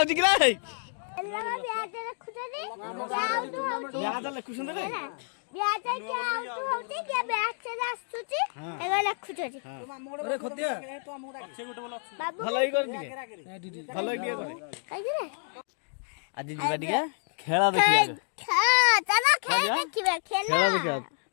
किला है याद लिखुछन रे ब्याज के आउट होती जे बैक से आस्तुची एगो लिखुछी अरे खुदिया अच्छे गोटे बोल भलाई कर दिए भलाई दिए काई रे आज जीवा दिया खेला देखिया चलो खेल देखिबा खेला देखिया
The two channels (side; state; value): right; silent; 58 dB below the other